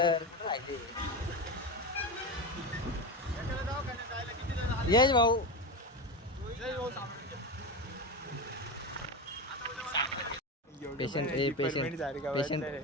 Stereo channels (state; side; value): normal; both; correlation 0.20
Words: कुठं राहिले? यश भाऊ